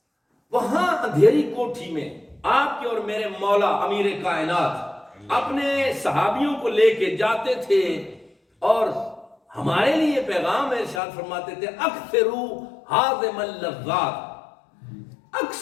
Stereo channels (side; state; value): right; drops out; at 11.0 s